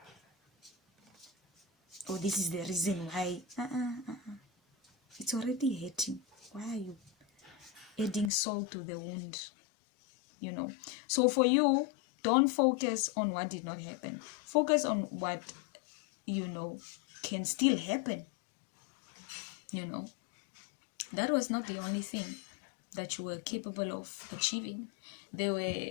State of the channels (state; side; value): drops out; right; at 8.3 s